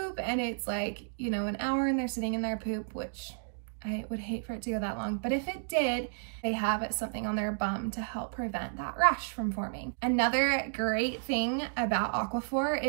and it's like, you know, an hour and they're sitting in their poop, which I would hate for it to go that long. But if it did, they have something on their bum to help prevent that rash from forming. Another great thing about AQUAPHOR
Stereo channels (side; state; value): left; silent; digital silence